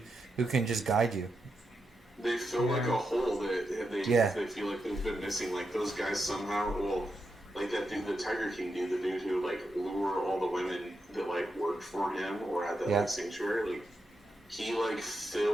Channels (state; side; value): normal; both; correlation 0.86